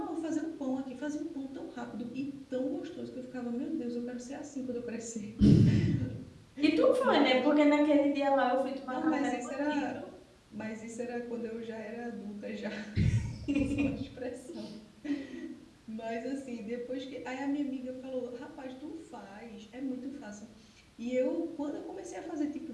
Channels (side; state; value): both; identical; correlation 1.00